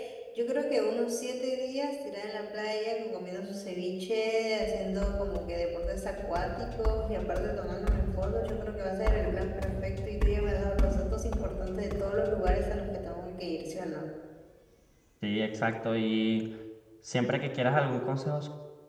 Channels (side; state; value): both; identical; correlation 1.00